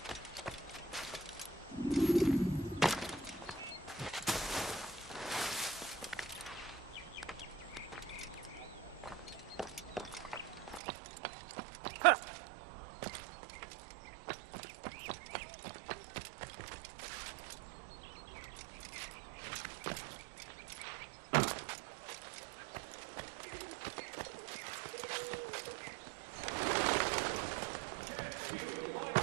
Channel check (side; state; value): left; drops out; at 10.8 s